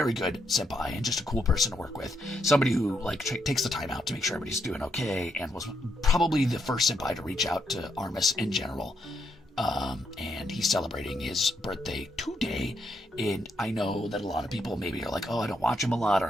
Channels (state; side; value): normal; both; correlation 0.78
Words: good senpai and just a cool person to work with. Somebody who takes the time out to make sure everybody's doing okay, and was probably the first senpai to reach out to Armis in general. And he's celebrating his birthday today, and I know that a lot of people maybe are like, oh, I don't watch him a lot,